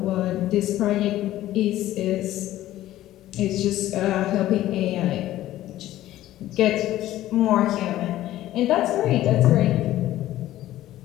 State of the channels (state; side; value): quieter; right; 14.3 dB